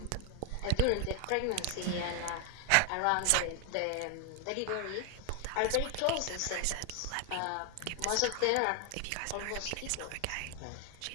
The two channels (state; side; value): different; both; correlation 0.01